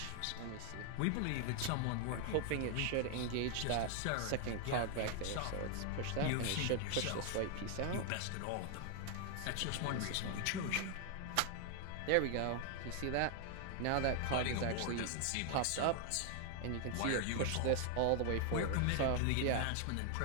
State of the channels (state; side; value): different; both; correlation 0.00